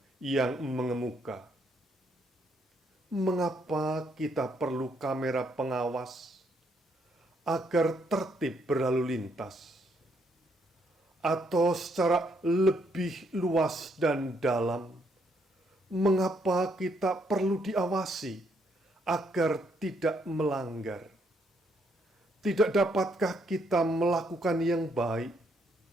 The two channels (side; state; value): both; normal; correlation 0.72